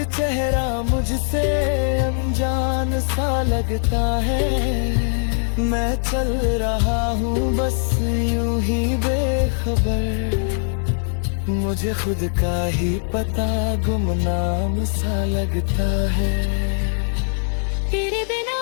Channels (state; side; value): silent; right; 65 dB below the other